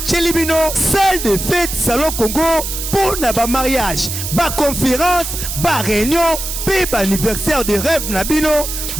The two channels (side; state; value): right; noise; hiss, 5 dB below the sound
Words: bino salle de fête salon Congo pour na ba mariage ba conférence ba réunion pe ba anniversaire de rêve na bino